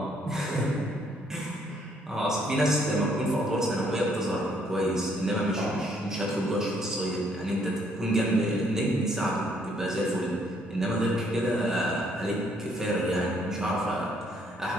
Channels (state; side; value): normal; both; correlation 0.68